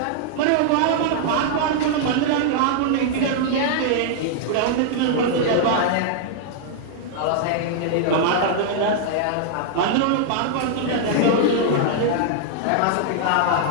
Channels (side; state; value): both; different; correlation -0.01